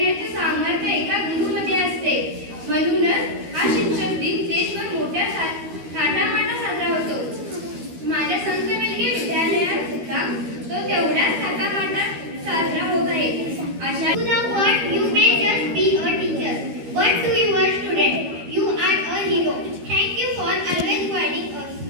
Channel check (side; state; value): left; late; 13 ms